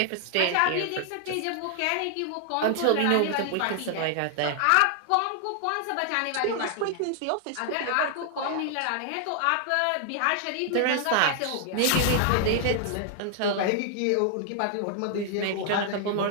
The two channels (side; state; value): both; different; correlation 0.00